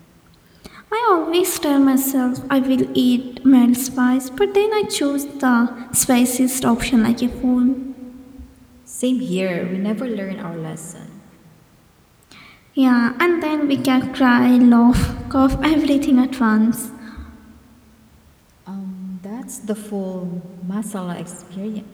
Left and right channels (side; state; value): both; identical; correlation 1.00